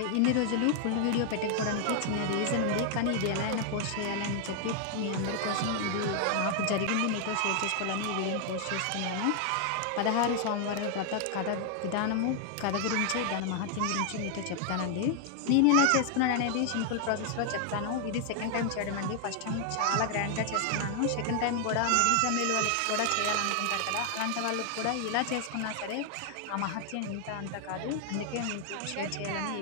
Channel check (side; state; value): both; different; correlation 0.00